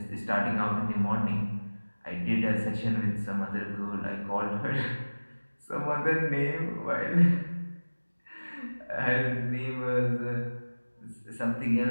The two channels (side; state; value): both; inverted; correlation -1.00